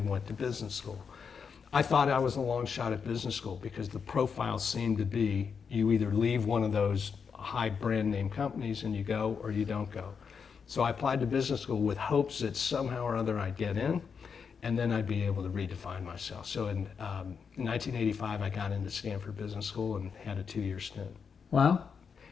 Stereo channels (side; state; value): right; quieter; 6.2 dB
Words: went to business school. I thought I was a long shot at business school because the profile seemed to be you either leave one of those high brand name companies and you go or you don't go. So I applied to business school with hopes that somehow or other I'd get in and then I'd be able to redefine myself. So in 1985, I got into Stanford Business School and had a 2-year stint. Wow.